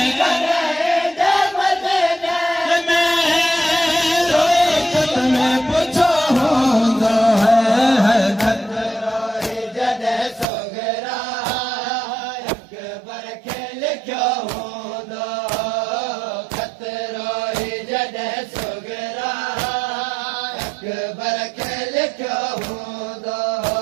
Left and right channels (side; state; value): left; drops out; at 10.5 s